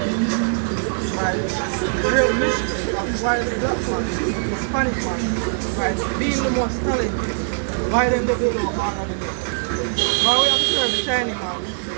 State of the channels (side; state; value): left; silent; digital silence